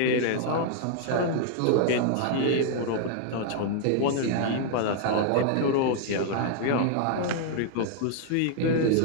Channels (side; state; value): both; different; correlation 0.00